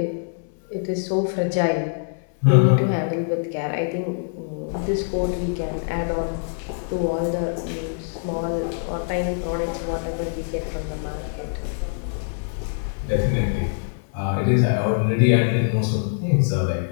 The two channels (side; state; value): right; silent; 62 dB below the other